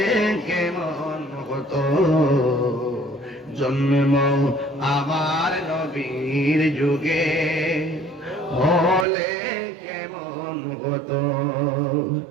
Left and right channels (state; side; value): drops out; left; at 9.1 s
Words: কেমন হতো, জন্ম আমার নবীর যুগে হলে কেমন হতো,